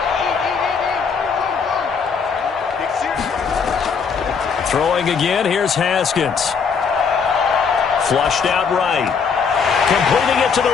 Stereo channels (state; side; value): quieter; right; 6.0 dB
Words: Throwing again, here's Haskins. Flushed out right. Completing it to